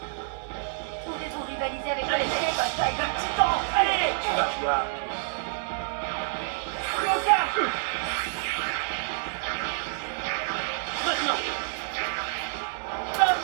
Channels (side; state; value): left; silent; 58 dB below the other